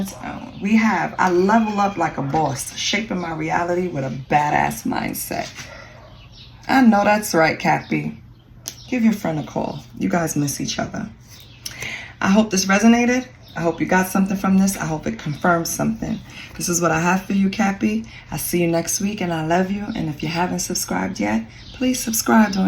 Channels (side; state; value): both; identical; correlation 1.00